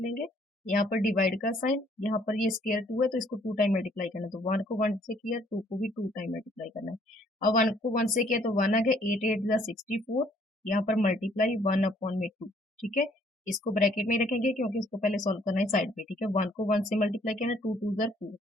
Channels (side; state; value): both; normal; correlation 0.63